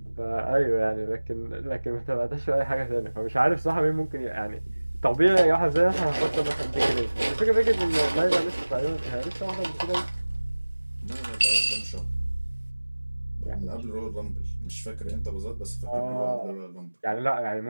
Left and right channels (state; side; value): inverted; both; correlation -1.00